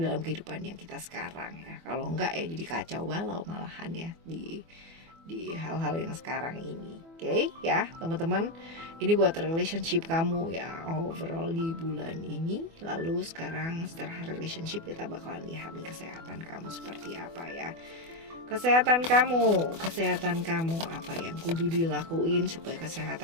kehidupan yang kita sekarang ya. Kalau enggak ya jadi kacau balau malahan ya di hal-hal yang sekarang ini. Oke ya teman-teman, ini buat relationship kamu ya overall di bulan ini. Lalu sekarang setelah relationship kita bakalan lihat nih kesehatan kamu seperti apa ya. kesehatan kamu apa yang kudu dilakuin supaya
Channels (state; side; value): late; left; 24 ms